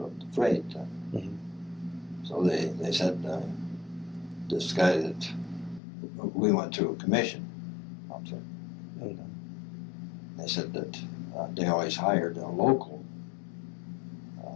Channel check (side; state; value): right; drops out; at 5.8 s